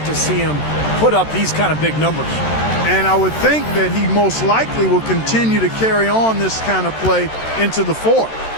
to see him put up these kind of big numbers. And I would think that he most likely will continue to carry on this kind of play into the fourth.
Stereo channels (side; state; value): right; late; 13 ms